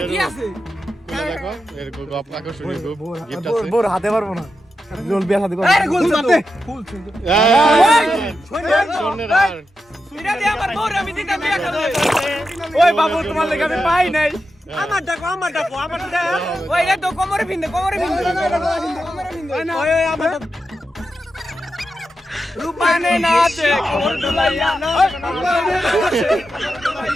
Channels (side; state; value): both; normal; correlation 0.89